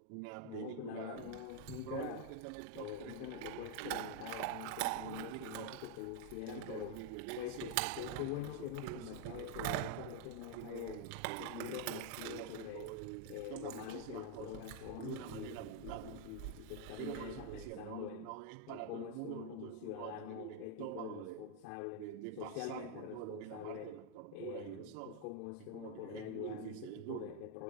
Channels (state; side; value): different; both; correlation 0.00